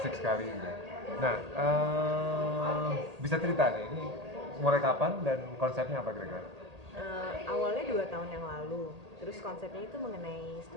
sekali gitu. Nah, bisa cerita nih, ini mulai kapan dan konsepnya apa kira-kira? Awalnya 2 tahun yang lalu, terus konsepnya itu mengenai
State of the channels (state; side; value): late; left; 1.8 ms